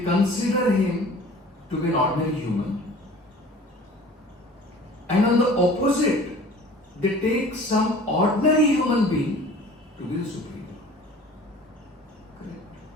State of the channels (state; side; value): normal; both; correlation 0.46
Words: consider Him to be an ordinary human. And on the opposite, they take some ordinary human being to be the Supreme Lord. Correct?